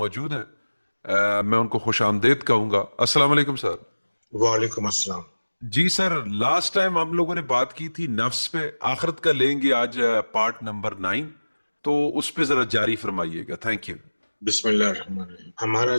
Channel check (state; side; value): inverted; both; correlation -1.00